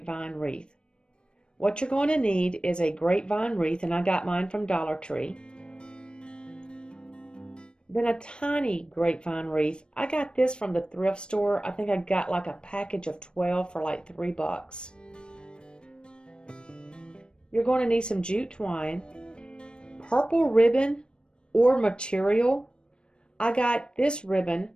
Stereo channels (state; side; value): late; right; 0.054 ms